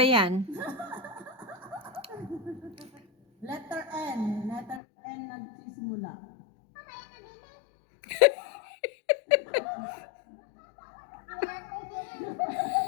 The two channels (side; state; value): right; drops out; at 4.8 s